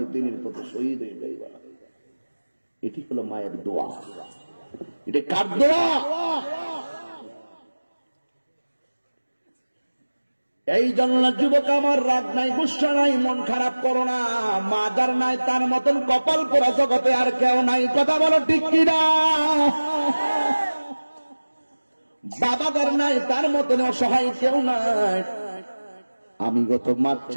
দিনের পথে শহীদ হয়ে যাইবা। এটি হলো মায়ের দোয়া। এটা কার দোয়া? এই জন্য যুবক আমার, রাগ নাই, গুসা নাই, মন খারাপ করো না। মা যার নাই তার মতন কপাল পোড়া জগতে আর কেউ নাই। কথা বলো ঠিক কিনা? বাবা যার নাই তার মতন অসহায় কেউ নাই। আমি গত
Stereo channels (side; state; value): both; inverted; correlation -1.00